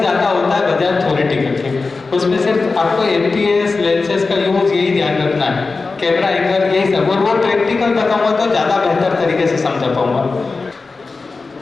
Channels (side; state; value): right; quieter; 4.0 dB